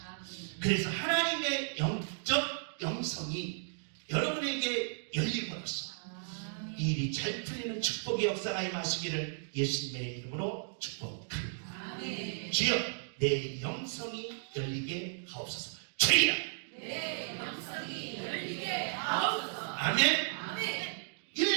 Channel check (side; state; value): left; silent; digital silence